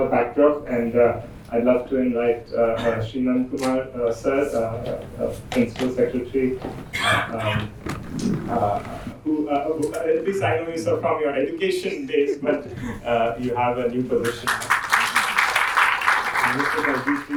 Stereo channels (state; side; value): identical; both; correlation 1.00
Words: backdrop, and I'd love to invite Shri Nandkumar sir, Principal Secretary, who at least I know you sir from your education days, but you have a new position. Mr.